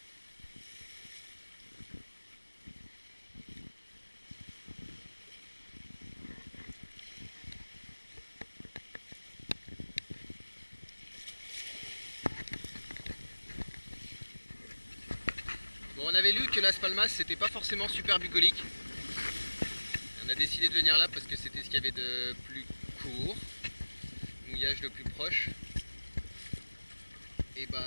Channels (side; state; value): both; inverted; correlation -1.00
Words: Bon, on avait lu que Las Palmas c'était pas forcément super bucolique. On a décidé de venir là parce que c'était ce qu'il y avait de plus court, mouillage le plus proche. Et